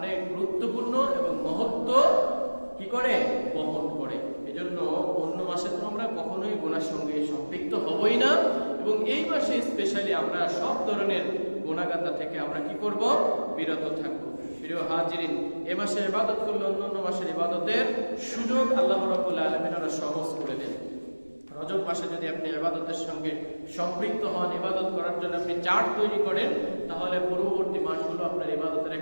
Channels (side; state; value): both; inverted; correlation -1.00